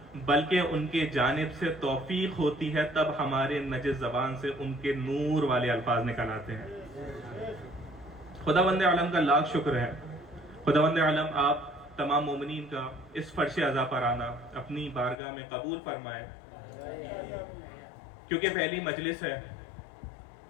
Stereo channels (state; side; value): drops out; right; at 15.2 s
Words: بلکہ ان کے جانب سے توفیق ہوتی ہے، تب ہمارے نجس زبان سے ان کے نور والے الفاظ نکل آتے ہیں. خداوند عالم کا لاکھ شکر ہے. خداوند عالم آپ تمام مومنین کا اس فرش عزا پر آنا اپنی بارگاہ میں قبول فرمائے، کیونکہ پہلی مجلس ہے